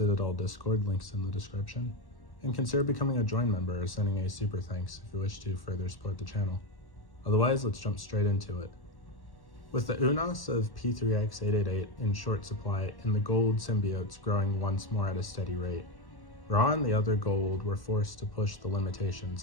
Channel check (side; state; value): right; late; 1.1 ms